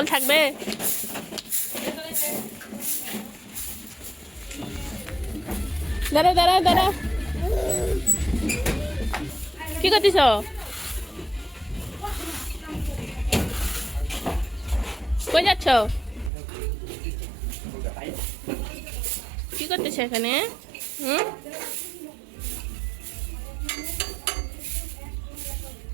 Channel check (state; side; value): drops out; left; at 16.3 s